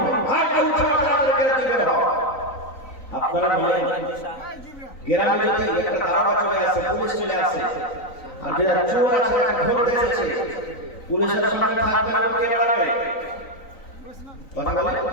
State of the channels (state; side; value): late; right; 3.9 ms